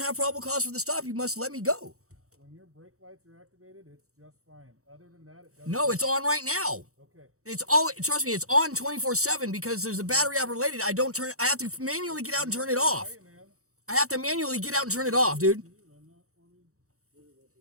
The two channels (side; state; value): left; late; 0.64 ms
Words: probable cause for the stop. You must let me go. When your brake lights are activated, it's just fine. Other than that, it doesn't. No, it's on right now. Okay. It's all, trust me, it's on 24/7 because there's a battery operated. I have to manually get out and turn it off. Hey, man. I have to manually get out and turn it off, dude.